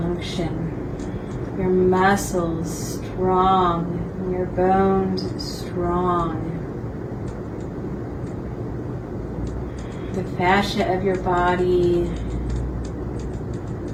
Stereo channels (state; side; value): identical; both; correlation 1.00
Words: function, your muscles strong, and your bones strong. The fascia of your body